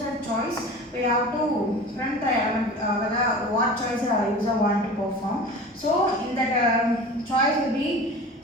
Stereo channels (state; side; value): normal; both; correlation 0.37